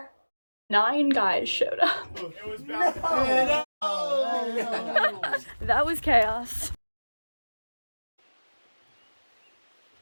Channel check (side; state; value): both; inverted; correlation -1.00